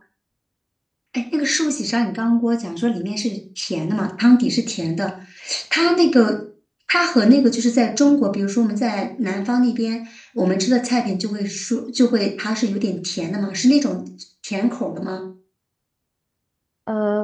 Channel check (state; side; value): identical; both; correlation 1.00